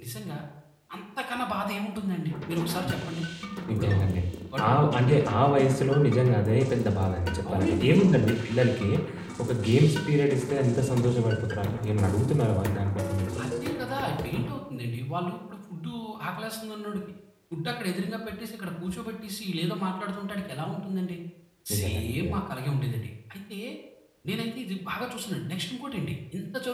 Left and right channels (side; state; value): both; identical; correlation 1.00